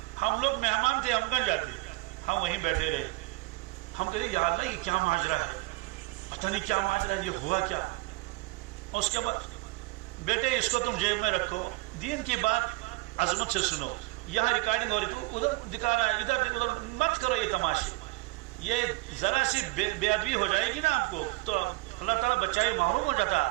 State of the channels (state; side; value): quieter; left; 23.9 dB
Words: ہم لوگ مہمان تھے, ہم کہاں جاتے, ہم وہیں بیٹھے رہے. ہم کہتے یا اللہ یہ کیا ماجرا ہے, پتہ نہیں کیا ماجرا ہے, یہ ہوا کیا. اور اس کے بعد بیٹے اس کو تم جیب میں رکھو, دین کی بات عظمت سے سنو. یہاں ریکارڈنگ ہو رہی تو ادھر دکھا رہا ہے, ادھر ادھر مت کرو یہ تماشے. یہ ذرا سی بے ادبی ہو جائے گی نا آپ کو تو اللہ تعالیٰ بچائے محروم ہو جاتا